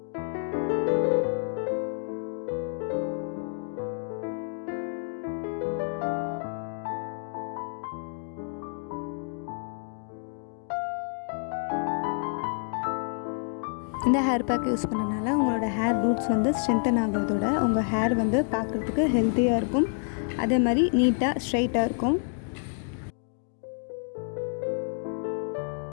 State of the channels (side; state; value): right; silent; 59 dB below the other